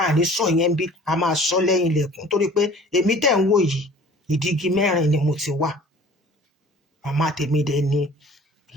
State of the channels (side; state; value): both; normal; correlation 0.48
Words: àní sọ yẹn bí a máa sọ lẹ́yìn ilẹ̀kùn torí pé èmi tẹ̀ ń wò yìí ìdígi mẹ́rin ni mo ti wà màmá tèmi dẹ̀ ni